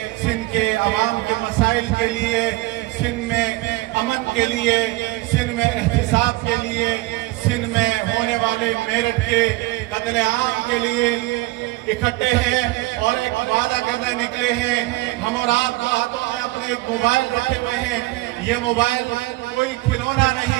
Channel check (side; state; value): left; quieter; 20.1 dB